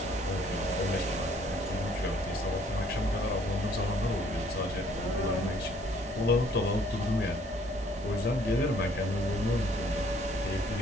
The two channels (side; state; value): both; normal; correlation 0.61